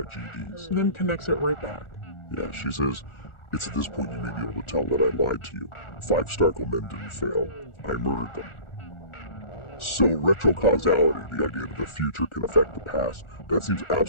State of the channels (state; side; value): late; right; 1.4 ms